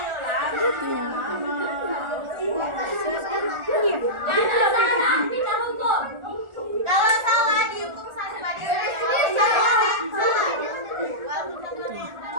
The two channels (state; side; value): late; left; 1.4 ms